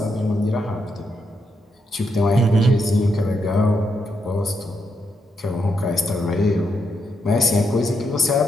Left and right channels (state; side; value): normal; both; correlation 0.80